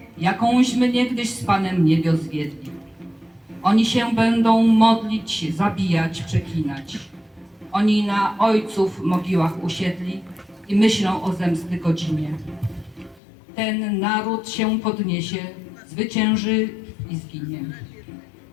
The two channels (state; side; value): drops out; right; at 13.2 s